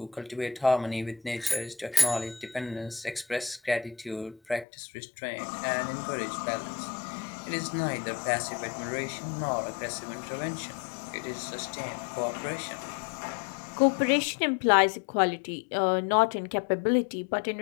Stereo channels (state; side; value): drops out; right; at 4.7 s